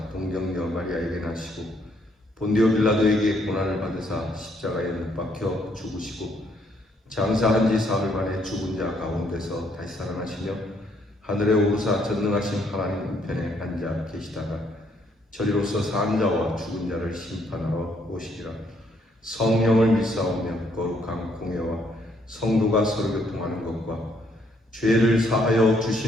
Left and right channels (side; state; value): both; normal; correlation 0.70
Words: 동정녀 마리아에게 나시고 본디오 빌라도에게 고난을 받으사 십자가에 못 박혀 죽으시고 장사한 지 사흘 만에 죽은 자 가운데서 다시 살아나시며 하늘에 오르사 전능하신 하나님 우편에 앉아 계시다가 저리로서 산 자와 죽은 자를 심판하러 오시리라. 성령을 믿사오며 거룩한 공예와 성도가 서로 교통하는 것과 죄를 사하여